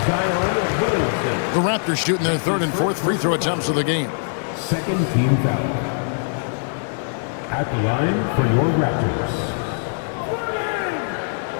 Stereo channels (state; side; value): silent; right; digital silence